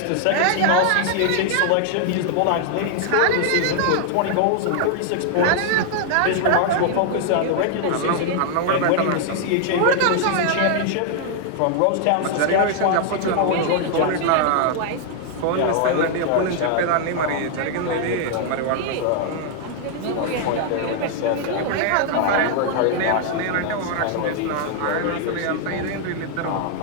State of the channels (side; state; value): both; different; correlation 0.00